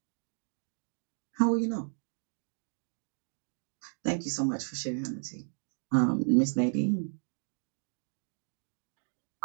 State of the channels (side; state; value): left; silent; 55 dB below the other